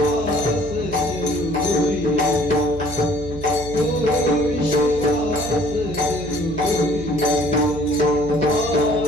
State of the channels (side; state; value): right; noise; hum, 11 dB below the sound